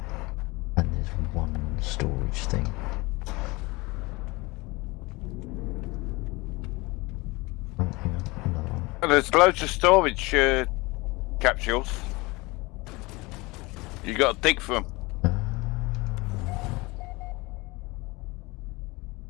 And there's one storage thing. Oh, hang on, another one. And there's loads of storage capsules. You got to dig for them.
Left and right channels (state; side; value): quieter; right; 23.8 dB